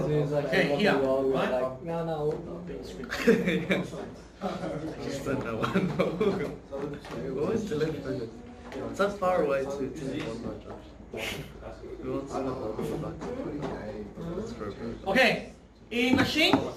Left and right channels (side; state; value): both; identical; correlation 1.00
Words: is like, Okay, I here, love you all. We're right? like, no. Just said no one. What was the left focus? It's that far away to one Josh. We want to know That's for a bit. Okay. In machine,